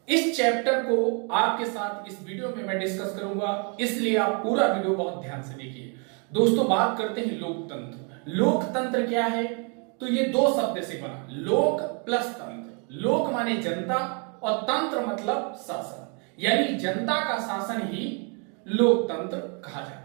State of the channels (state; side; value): quieter; left; 37.4 dB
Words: इस चैप्टर को आपके साथ इस वीडियो में मैं डिस्कस करूंगा, इसलिए आप पूरा वीडियो बहुत ध्यान से देखिए। दोस्तों, बात करते हैं लोकतंत्र। लोकतंत्र क्या है? तो ये दो शब्द से बना, लोक प्लस तंत्र। लोक माने जनता और तंत्र मतलब शासन, यानी जनता का शासन ही लोकतंत्र कहा